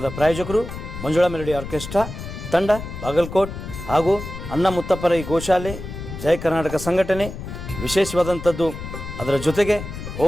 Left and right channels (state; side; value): noise; left; rumble, 9 dB below the sound